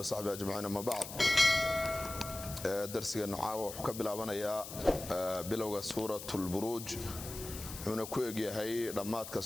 أجمعين. أما بعد درسنا عاو وحكبل عبنا بلغة سورة البروج ونكويج هي رماتك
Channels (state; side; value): noise; left; hiss, 10 dB below the sound